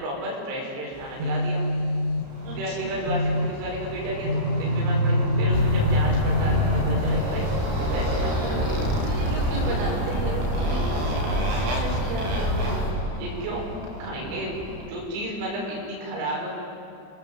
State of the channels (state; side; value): late; left; 32 ms